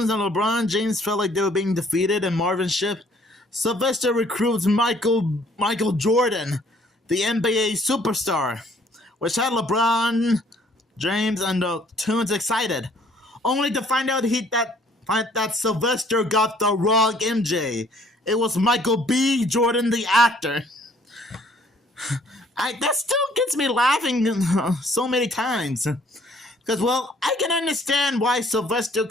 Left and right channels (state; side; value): normal; both; correlation 0.60